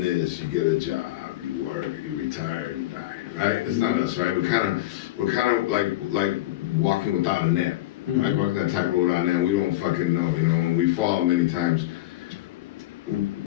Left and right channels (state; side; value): quieter; right; 16.1 dB